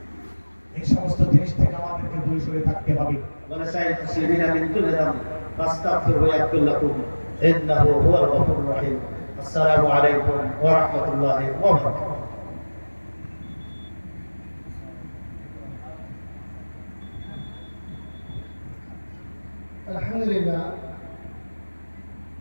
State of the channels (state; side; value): inverted; both; correlation -1.00